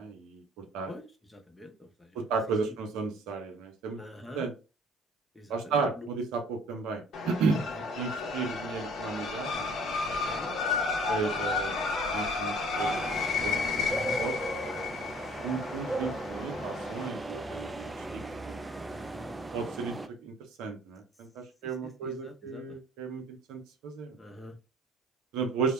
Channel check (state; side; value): normal; both; correlation 0.54